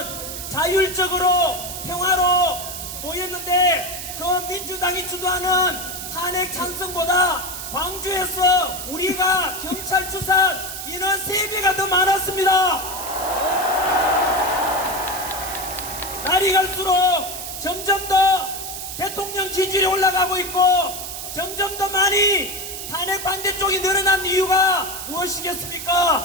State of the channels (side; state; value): right; noise; hiss, 8 dB below the sound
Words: 자율적으로 평화로 모였는데 그 민주당이 주도하는 탄핵 찬성보다 광주에서 우리가 경찰 추산 인원 3배가 더 많았습니다. 날이 갈수록 점점 더 대통령 지지율이 올라가고 있고 점점 더 많이 탄핵 반대 쪽이 늘어난 이유가